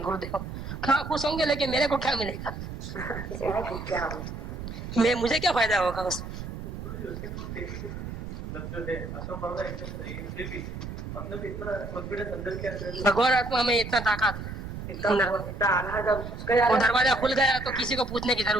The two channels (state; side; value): noise; right; rumble, 8 dB below the sound